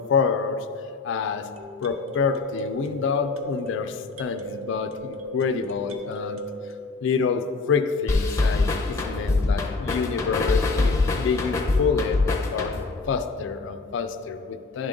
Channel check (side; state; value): right; quieter; 4.0 dB